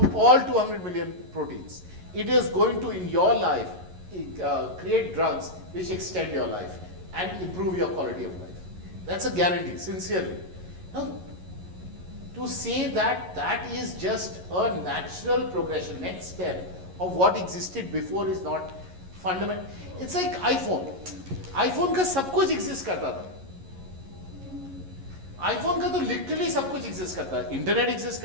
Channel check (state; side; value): late; left; 11 ms